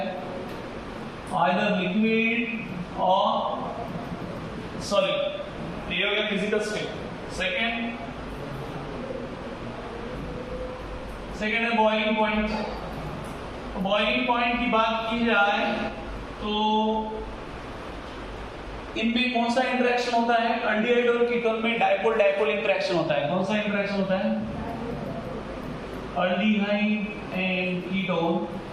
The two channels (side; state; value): both; identical; correlation 1.00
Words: आइदर लिक्विड और सॉलिड। ये हो गया फिजिकल स्टेट। सेकेंड है बॉइलिंग पॉइंट। बॉइलिंग पॉइंट की बात की जाए तो इनमें कौन सा इंटरेक्शन होता है? अल्डिहाइड और कीटोन में डाइपोल डाइपोल इंटरेक्शन होता है। कौन सा इंटरेक्शन होता है? aldehyde and ketone